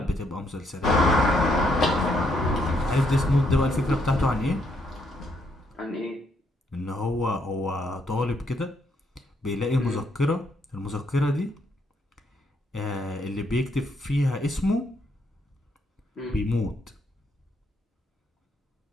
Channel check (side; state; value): both; normal; correlation 0.74